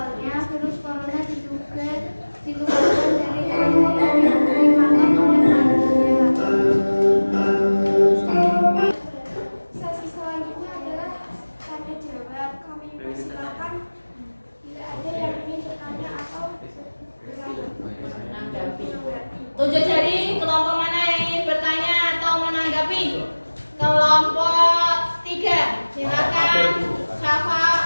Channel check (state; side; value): inverted; both; correlation -1.00